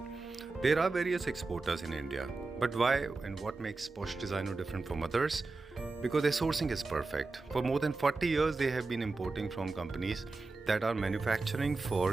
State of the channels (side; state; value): left; quieter; 3.6 dB